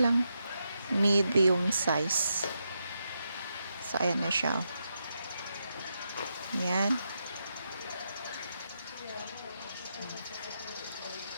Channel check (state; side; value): inverted; both; correlation -0.84